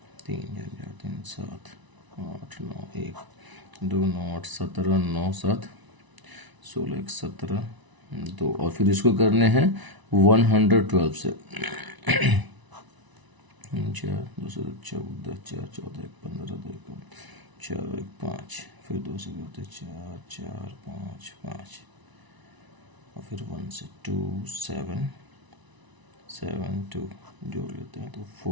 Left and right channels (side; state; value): left; late; 1.0 ms